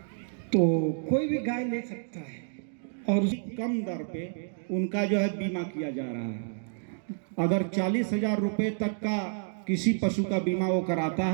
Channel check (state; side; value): silent; left; digital silence